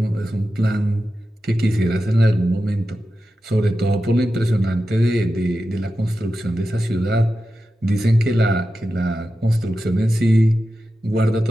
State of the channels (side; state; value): both; normal; correlation 0.92